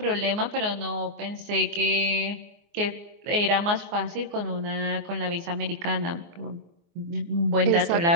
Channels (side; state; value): left; late; 24 ms